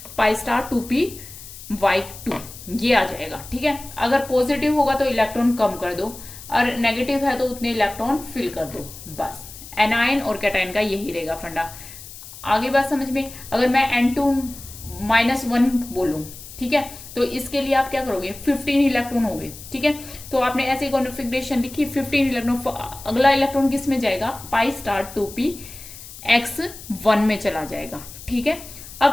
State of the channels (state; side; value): noise; left; hiss, 15 dB below the sound